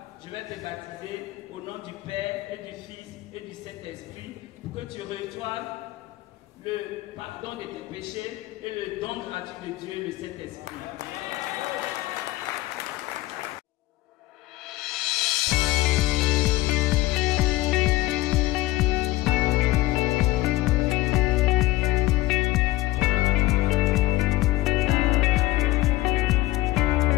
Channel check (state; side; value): quieter; right; 17.5 dB